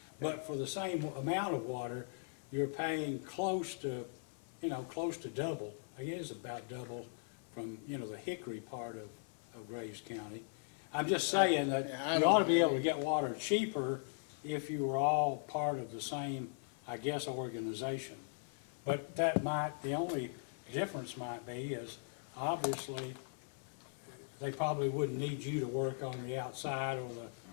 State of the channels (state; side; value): silent; right; 52 dB below the other